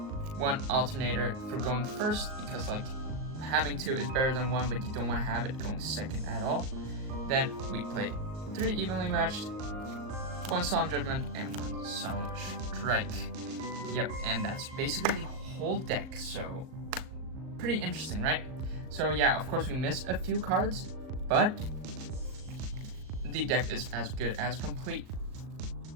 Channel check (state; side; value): late; left; 38 ms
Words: Alternator for going first, because like having 2 is better than 1, but you don't want to have it going second at all. Then we play 3 Evenly Matched, 1 Solemn Judgment, and 1 Solemn Strike. Yep, and that's basically the whole deck, so pretty interesting, right? So yeah, of course we miss a few cards, but the deck is as good as complete.